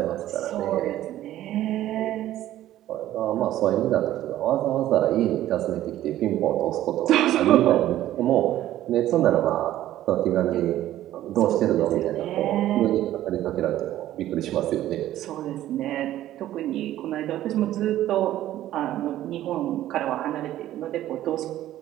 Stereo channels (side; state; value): left; quieter; 13.5 dB